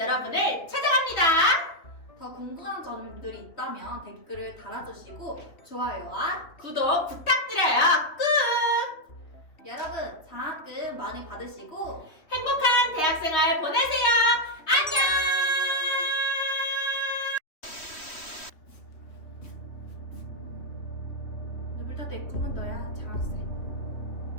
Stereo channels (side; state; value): right; late; 3.0 ms